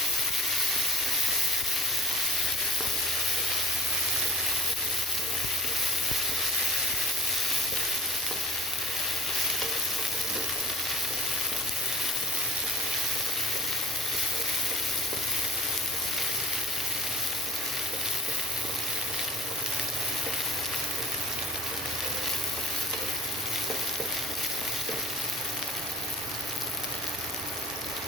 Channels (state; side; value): noise; right; hum, 24 dB below the sound